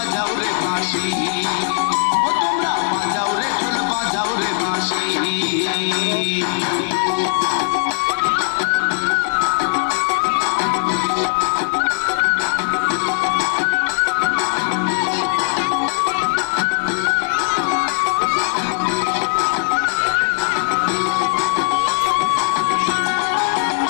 রে বাঁশি, ও তোমরা বাজাও রে ঢোল বাজাও রে বাঁশি।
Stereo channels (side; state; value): right; silent; digital silence